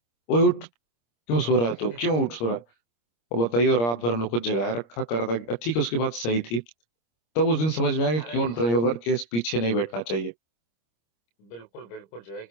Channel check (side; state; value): right; late; 26 ms